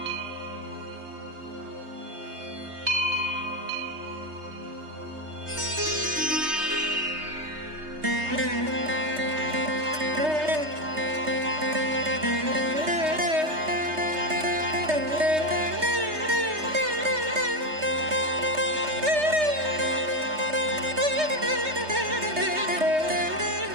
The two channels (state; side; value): late; left; 3.2 ms